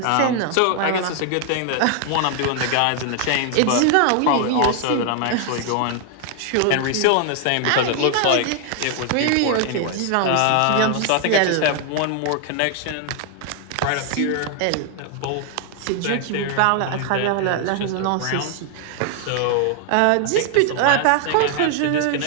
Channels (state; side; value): different; both; correlation 0.00